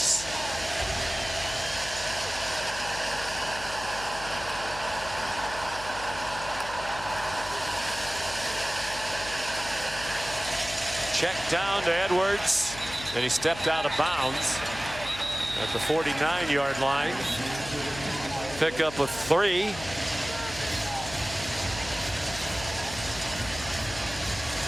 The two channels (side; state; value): left; noise; hum, 13 dB below the sound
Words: Check down to Edwards, and he stepped out of bounds at the 49-yard line. Pick up a 3.